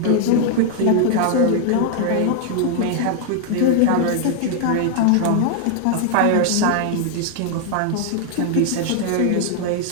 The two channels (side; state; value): both; different; correlation 0.00